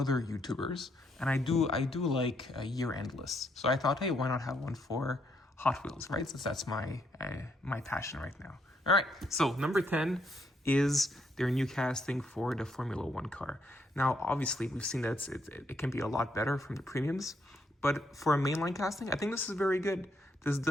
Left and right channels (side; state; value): both; normal; correlation 0.74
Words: YouTubers, and I do like year-end lists. So I thought, hey, why not have one for Hot Wheels, right? Since that's my passion right now. All right, so number 10 is their new casting for the Formula One car. Now, obviously, we've seen that it can be a lot better from the premiums, but for a mainline casting, I think this is very good. This